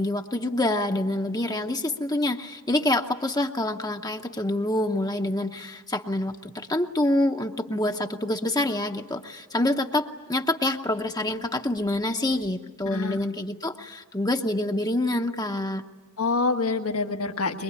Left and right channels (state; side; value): normal; both; correlation 0.57